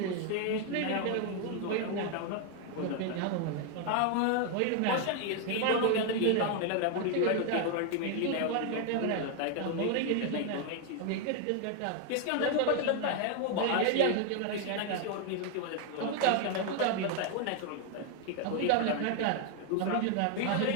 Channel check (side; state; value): both; different; correlation 0.00